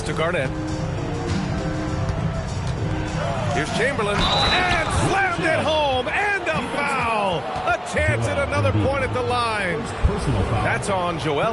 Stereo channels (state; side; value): identical; both; correlation 1.00